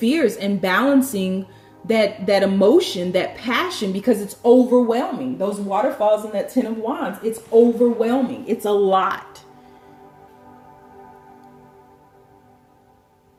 and balancing that emotion, that passion, because it's overwhelming. Those waterfalls in that Ten of Wands, it's overwhelming. It's a lot.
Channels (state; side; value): identical; both; correlation 1.00